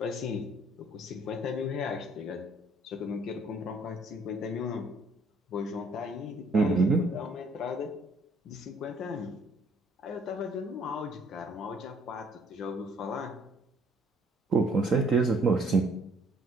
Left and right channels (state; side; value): normal; both; correlation 0.61